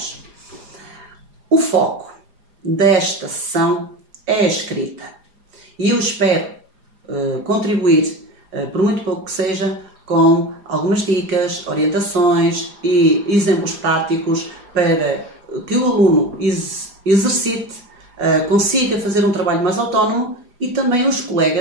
O foco desta sessão é a escrita e eu espero contribuir, por muito pouco que seja, com algumas dicas, orientações e exemplos práticos para que o aluno exercite, consiga fazer um trabalho mais autónomo e também os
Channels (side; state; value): left; late; 4.9 ms